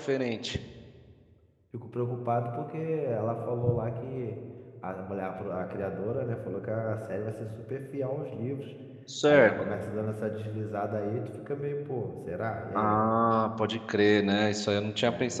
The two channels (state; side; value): identical; both; correlation 1.00